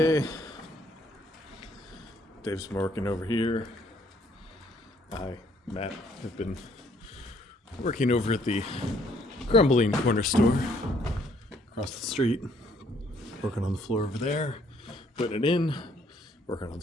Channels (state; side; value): normal; both; correlation 0.66